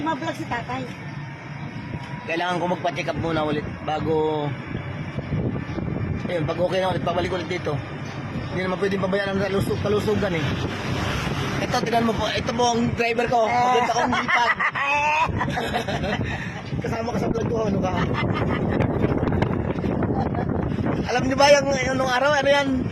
si tatay. Kailangan ko magpa-check up muna ulit bago ayun, pag okay na ulit, pabalik ulit dito. Hindi naman pwedeng pabayaan ng kalusugan eh. Ito, tingnan mo po. Ito po ang driver ko. Maganda akong lipag. Kasama ka sa vlog ko. Ano ka? Alam niyo ba yung nung araw? Ano yan?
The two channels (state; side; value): identical; both; correlation 1.00